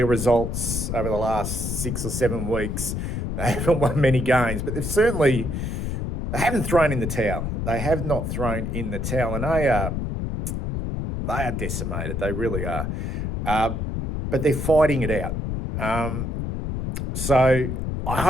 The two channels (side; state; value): left; noise; rumble, 2 dB below the sound